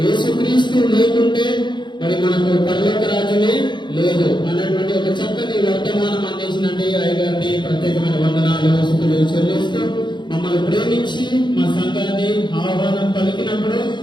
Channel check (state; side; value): late; right; 0.22 ms